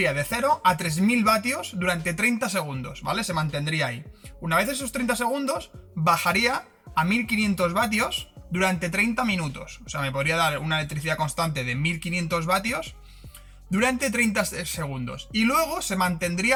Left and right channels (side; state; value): both; identical; correlation 1.00